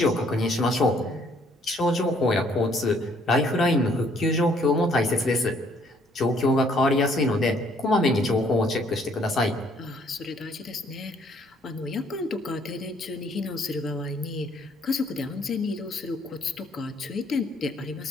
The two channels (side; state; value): both; normal; correlation 0.64